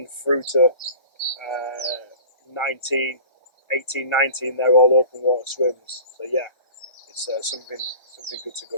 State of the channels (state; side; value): late; right; 1.4 ms